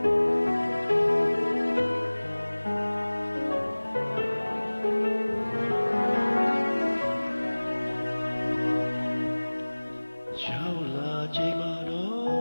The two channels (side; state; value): both; inverted; correlation -1.00